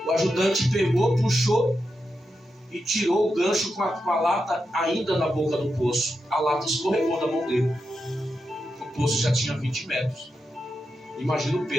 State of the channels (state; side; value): normal; both; correlation 0.87